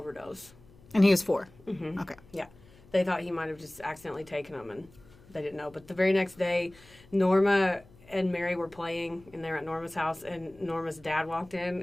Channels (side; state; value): left; noise; hum, 25 dB below the sound